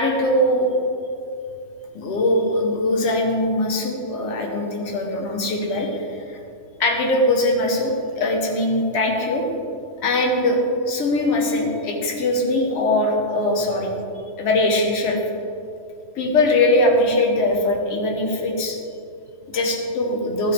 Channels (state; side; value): late; left; 3.1 ms